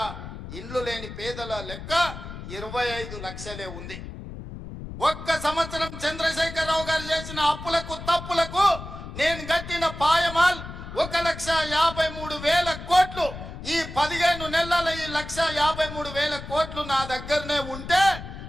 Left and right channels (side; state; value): left; noise; rumble, 11 dB below the sound